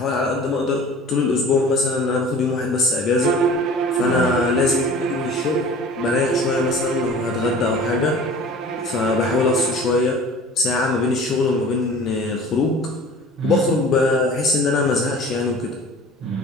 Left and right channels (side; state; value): both; normal; correlation 0.43